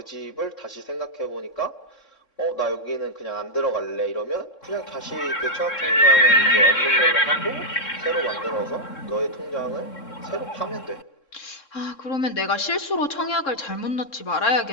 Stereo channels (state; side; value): late; right; 3.7 ms